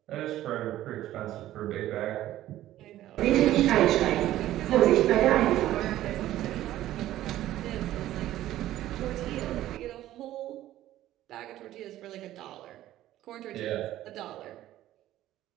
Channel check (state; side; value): quieter; left; 14.0 dB